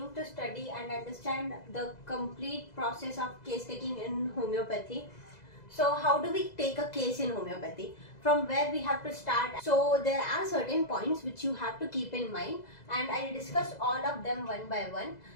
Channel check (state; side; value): late; right; 2.0 ms